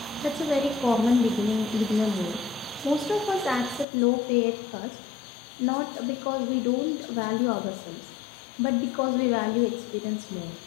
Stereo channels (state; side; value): drops out; right; at 3.9 s